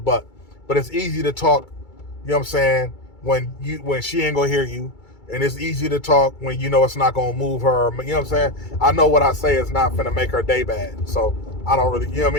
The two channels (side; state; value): right; late; 2.3 ms